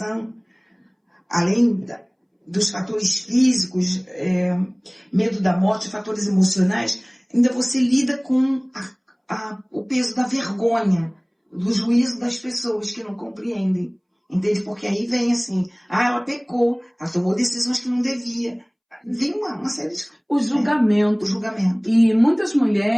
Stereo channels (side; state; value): both; identical; correlation 1.00